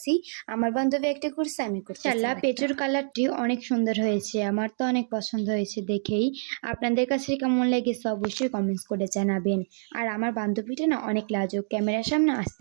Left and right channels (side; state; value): left; silent; digital silence